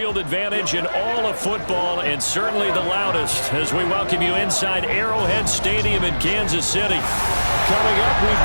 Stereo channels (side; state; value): both; inverted; correlation -1.00